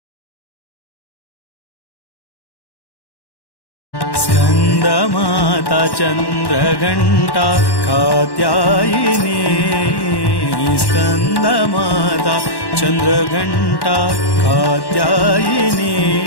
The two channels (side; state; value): right; late; 1.1 ms